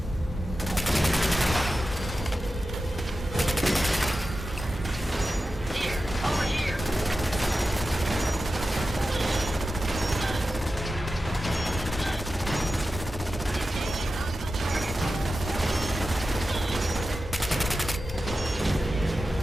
Here, over here.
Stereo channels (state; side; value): normal; both; correlation 0.92